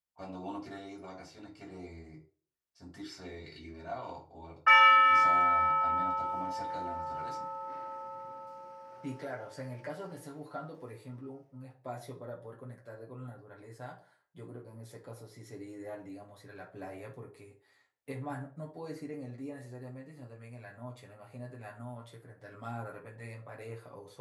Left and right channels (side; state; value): both; identical; correlation 1.00